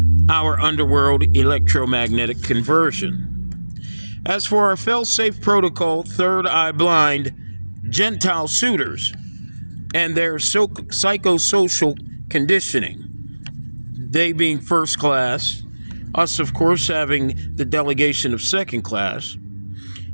our underworld electromagnetic conversion. As for our fail-safe protocol, third eye blind Gentile suitors and their psychosocial conditioning, they being first class, us of course having the delegation of second class,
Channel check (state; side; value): inverted; both; correlation -1.00